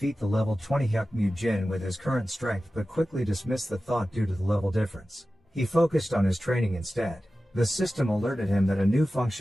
the level 20 Hyuk Jin with his current strength but quickly dismissed the thought due to the level difference. He focused on his training instead. The system alerted him that a new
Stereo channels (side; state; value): both; normal; correlation 0.95